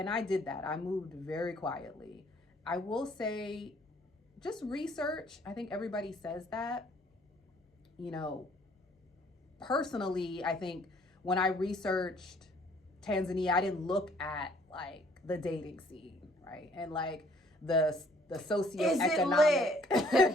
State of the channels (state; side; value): normal; both; correlation 0.61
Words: I did that. I moved very quietly. I will say, just research. I think everybody says that. Personally, I think when I researched Tanzania, I didn't look at like the dating scene, right? And like the